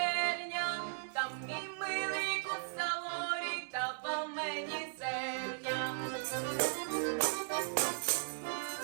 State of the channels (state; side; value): silent; left; digital silence